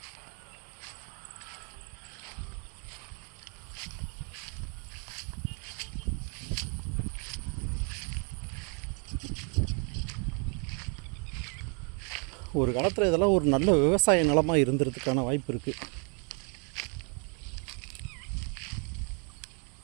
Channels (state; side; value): quieter; left; 37.3 dB